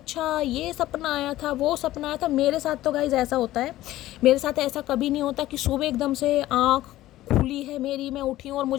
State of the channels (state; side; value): quieter; right; 15.4 dB